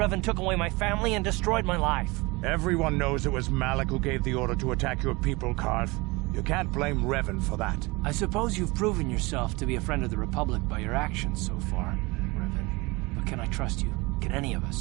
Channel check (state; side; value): quieter; left; 24.5 dB